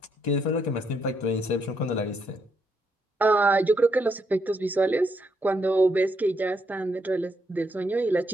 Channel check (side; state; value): both; normal; correlation 0.76